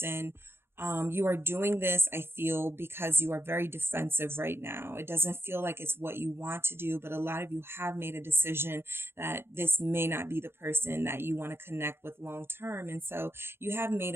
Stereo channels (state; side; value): late; left; 0.11 ms